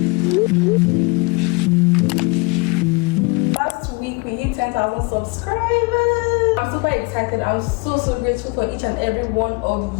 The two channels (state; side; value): quieter; right; 27.4 dB